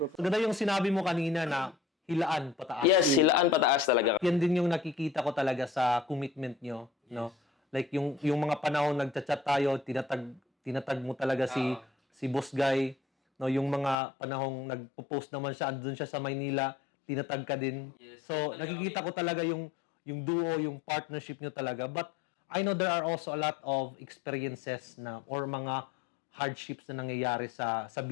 Ganda yung sinabi mo kanina na hilaan pataas. yes, silaan pataas talaga. Yan din yung nakikita ko talaga sa commitment nyo, no? Like yung mga panahon nagchat-chat tayo, tinatag mo talaga si Boss Guy. no, yung mga panahong nagpo-post naman siya, andun siya sa Maynila, tinatag ka din. So, nakikita ko talaga yung duo, yung partnership nyo talaga. But I know there are also a lot of experiences na or mga hardships na nangyayari sa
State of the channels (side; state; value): right; drops out; at 14.0 s